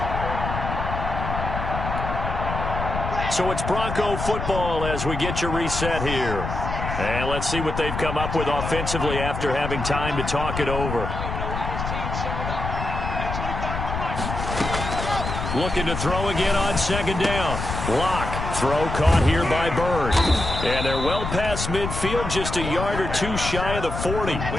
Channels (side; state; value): left; noise; rumble, 5 dB below the sound